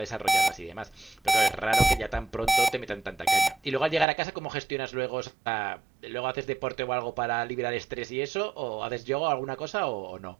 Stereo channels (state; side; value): drops out; left; at 4.0 s